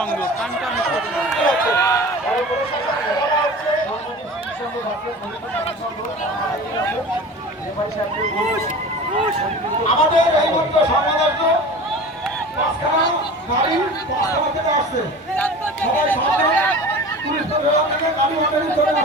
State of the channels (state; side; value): normal; both; correlation 0.37